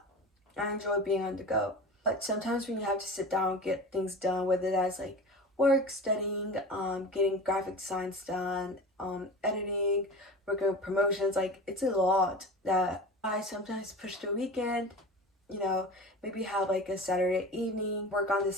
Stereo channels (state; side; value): normal; both; correlation 0.33